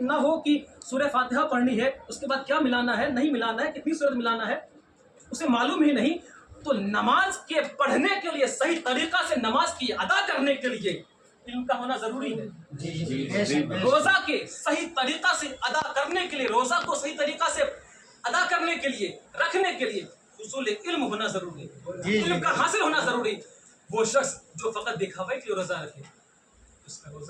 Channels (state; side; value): identical; both; correlation 1.00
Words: نہ ہو کہ سورہ فاتحہ پڑھنی ہے، اس کے بعد کیا ملانا ہے، نہیں ملانا ہے، کتنی سورت ملانا ہے، اسے معلوم ہی نہیں. تو نماز کے پڑھنے کے لیے، صحیح طریقہ سے نماز کی ادا کرنے کے لیے علم کا ہونا ضروری ہے. روزہ کے صحیح طریقہ سے ادا کرنے کے لیے، روزہ کو صحیح طریقہ سے ادا کرنے کے لیے، رکھنے کے لیے حصول علم ہونا ضروری ہے. علم کا حاصل ہونا ضروری. وہ شخص جو فقط دکھاوے کے لیے روزہ رکھے اس کا